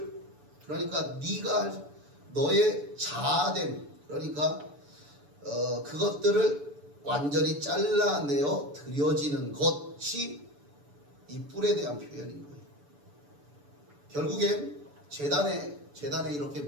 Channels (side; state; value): left; late; 6.9 ms